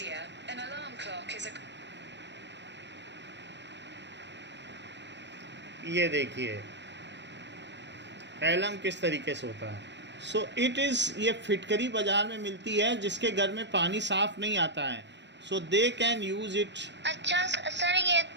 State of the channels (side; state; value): left; late; 0.51 ms